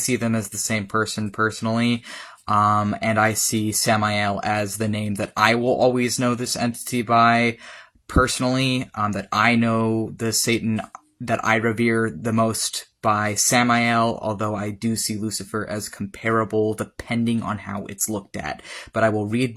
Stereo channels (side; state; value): both; identical; correlation 1.00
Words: them as the same person personally. And I see Samael as the name that I will always know this entity by. Personally, that I know the Satan that I revere the most by Samael, although I do see Lucifer as comparable depending on how it's looked at. But I will read